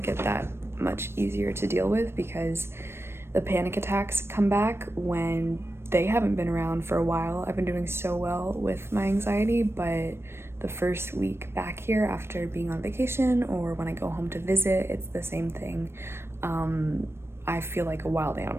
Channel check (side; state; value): left; late; 0.12 ms